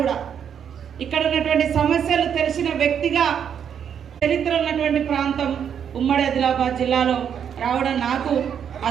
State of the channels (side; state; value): left; quieter; 8.2 dB